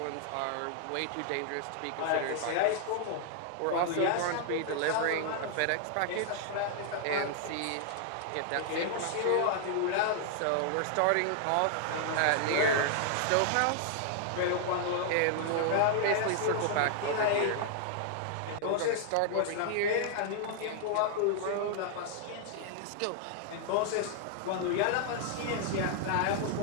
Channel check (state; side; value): different; both; correlation -0.01